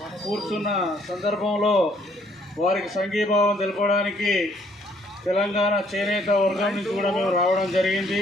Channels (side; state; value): both; normal; correlation 0.65